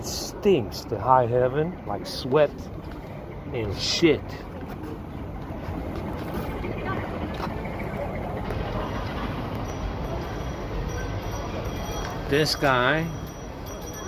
stinks to high heaven, like sweat and shit. This guy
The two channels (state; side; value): identical; both; correlation 1.00